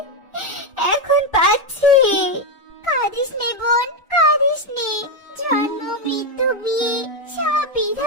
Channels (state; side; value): normal; both; correlation 0.06